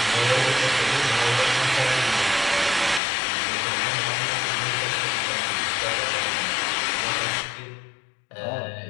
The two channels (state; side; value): drops out; right; at 3.0 s